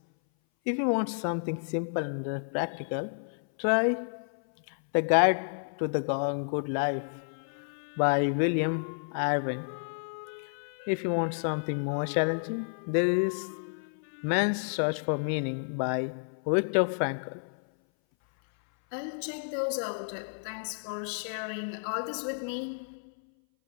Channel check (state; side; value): silent; right; 57 dB below the other